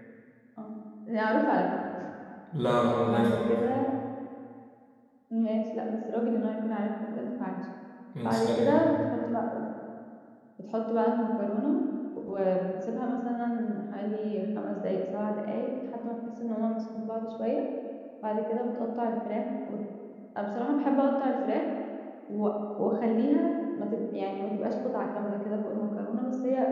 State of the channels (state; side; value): identical; both; correlation 1.00